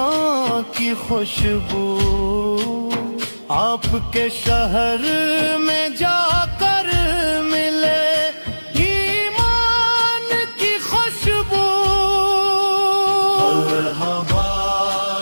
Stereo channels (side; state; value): both; inverted; correlation -1.00